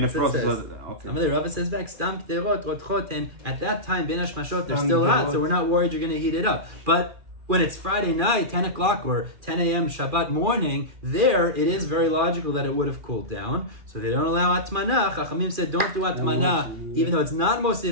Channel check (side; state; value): left; late; 2.4 ms